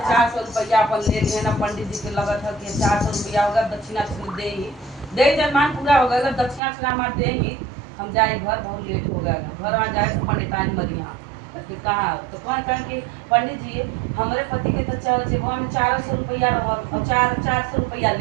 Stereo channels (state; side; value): drops out; left; at 6.6 s